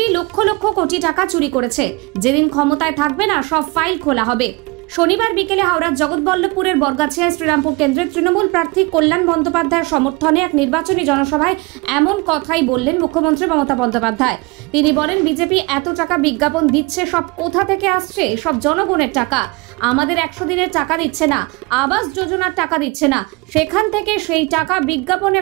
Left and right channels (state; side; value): quieter; left; 25.8 dB